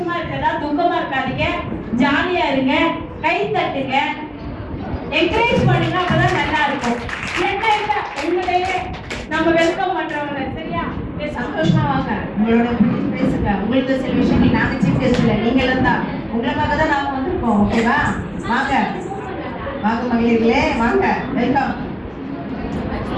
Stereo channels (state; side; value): identical; both; correlation 1.00